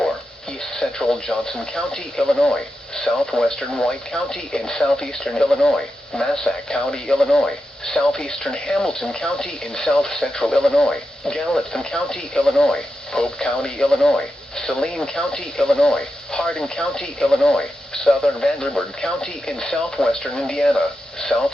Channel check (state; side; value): normal; both; correlation 0.88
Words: East Central Johnson County, Illinois, Southwestern White County in Southeastern Illinois, Massac County, Illinois, Southeastern Hamilton County in South Central Illinois, Gallatin County, Illinois, Pope County, Illinois, Saline County, Illinois, Hardin County, Illinois, Southern Vanderburgh County in Southwestern Indiana,